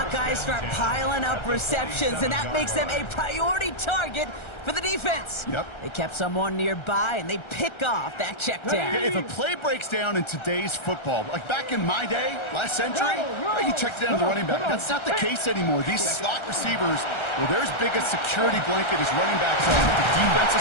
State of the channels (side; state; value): right; late; 1.3 ms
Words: guys start piling up receptions, and that makes them a priority target for the defense. Yep. They kept someone nearby, and they pick off that check down. If a play breaks down in today's football, like back in my day, last century, you checked down to the running back. That's not the case anymore. These slot receivers, well, they're as big a security blanket as running backs are. But the